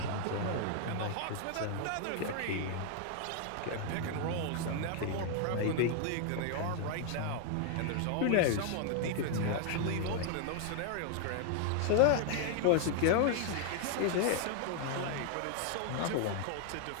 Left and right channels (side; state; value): both; different; correlation 0.00